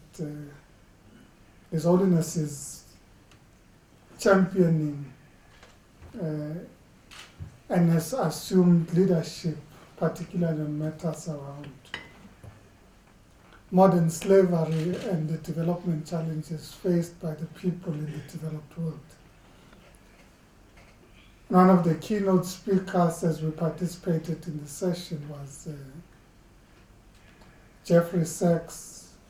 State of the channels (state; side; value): identical; both; correlation 1.00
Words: His Holiness is championing and has assumed leadership, particularly on matters around modern slavery and the development challenges faced by the people in the developed world. One of the keynote speakers as we participated in the session was Jeffrey Sachs,